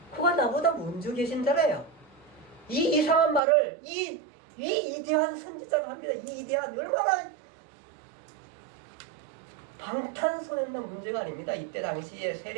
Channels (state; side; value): drops out; left; at 3.4 s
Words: 그가 나보다 먼저 계신 자래요. 이 이상한 말을 이 위대한 선지자가 합니다. 이 위대한, 얼마나 방탄소년단 문제가 아닙니다. 이때 당시에